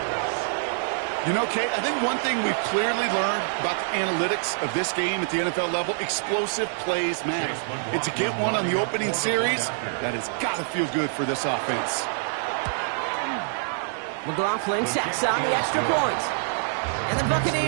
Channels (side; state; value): left; silent; digital silence